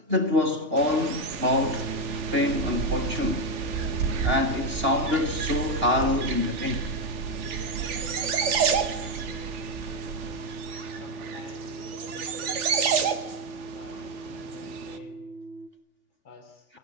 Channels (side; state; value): left; late; 3.4 ms